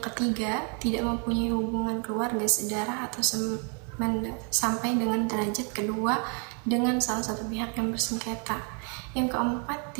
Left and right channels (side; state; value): left; quieter; 38.0 dB